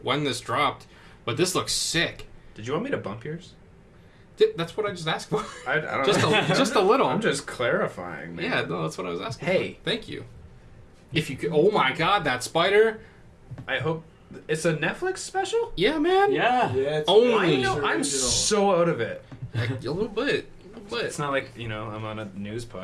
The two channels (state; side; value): identical; both; correlation 1.00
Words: this dropped, but this looks sick. Did you want me to bump yours? That's what I just asked for. I don't just know. just a little. I'm just clarifying, man. Yeah, no, that's what I was asking. Hey. For. Thank you. If you could, oh my God, that spider! I hope it's a Netflix special. Yeah, man. Yeah. It's Only. I'm so out of it. Like, a little bit. It's not like I'm on a news